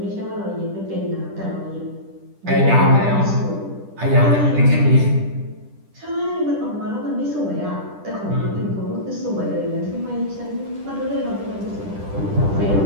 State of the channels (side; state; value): left; late; 10 ms